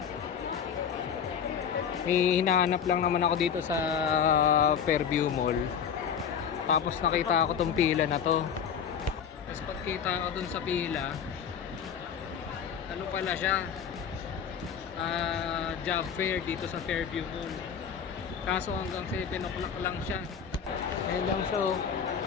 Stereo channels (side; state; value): right; quieter; 7.6 dB